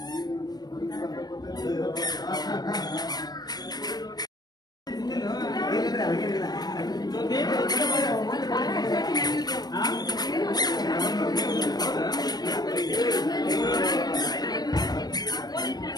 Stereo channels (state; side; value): late; right; 0.19 ms